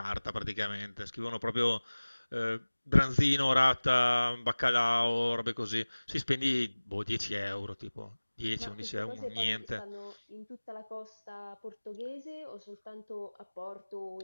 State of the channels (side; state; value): both; inverted; correlation -1.00